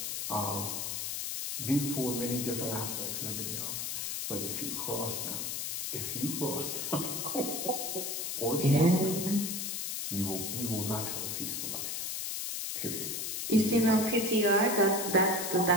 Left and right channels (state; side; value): noise; left; hiss, 3 dB below the sound